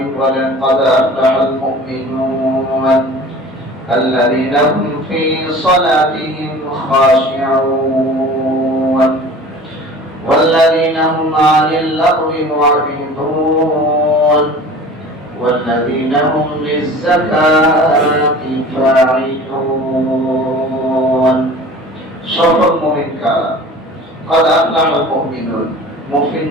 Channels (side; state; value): both; normal; correlation 0.42